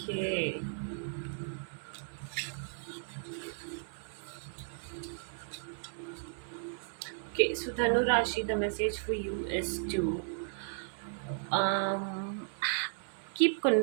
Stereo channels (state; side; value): silent; left; 55 dB below the other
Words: okay, so Dhanu Rashi, the message for you is to um keep